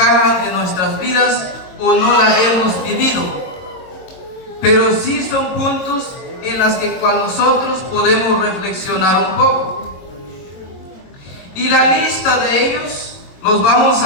en nuestras vidas o no las hemos vivido, pero sí son puntos en los que nosotros podemos reflexionar un poco. Y la lista de ellos los vamos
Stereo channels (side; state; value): right; late; 22 ms